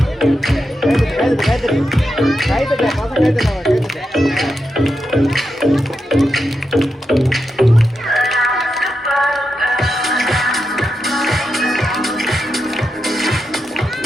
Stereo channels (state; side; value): normal; both; correlation 0.87